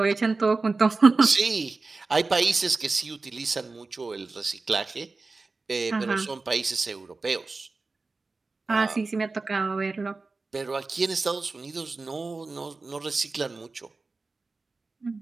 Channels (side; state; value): left; quieter; 3.8 dB